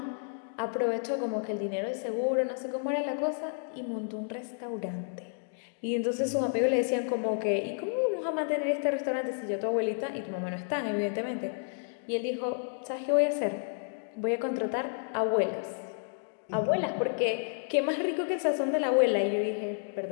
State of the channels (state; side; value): silent; right; digital silence